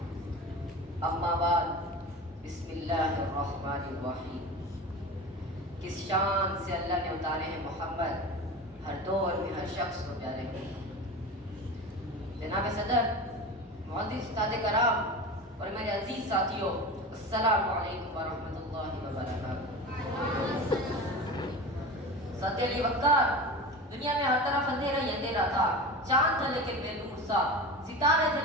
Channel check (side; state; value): both; normal; correlation 0.30